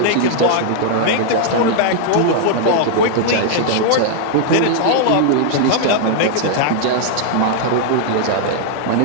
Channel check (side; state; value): both; different; correlation -0.01